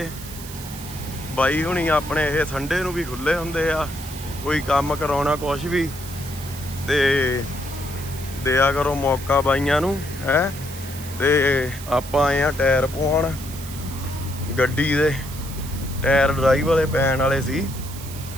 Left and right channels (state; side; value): noise; right; hiss, 13 dB below the sound